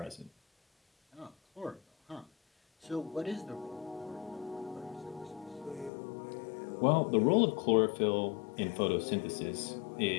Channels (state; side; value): drops out; right; at 5.9 s